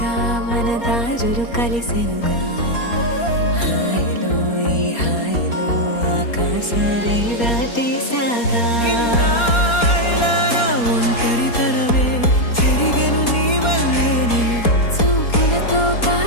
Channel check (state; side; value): late; right; 4.3 ms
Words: మన దారులు కలిసెనుగా హాయిలో ఈ హాయిలో ఆకాశాలే దాటేసాగా ఇన్నాళ్ళ నా ఒంటరితనమే చెరిగెను నీ వల్లేనే చూపులతో